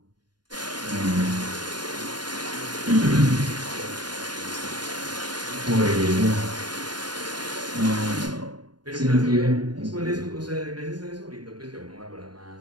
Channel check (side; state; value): left; late; 0.70 ms